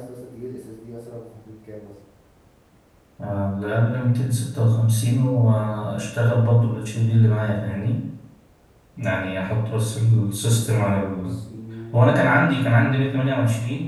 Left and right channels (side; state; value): both; identical; correlation 1.00